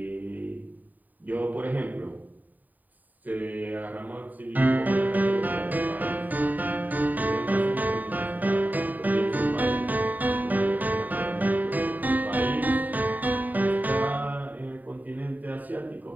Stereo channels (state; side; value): late; left; 0.084 ms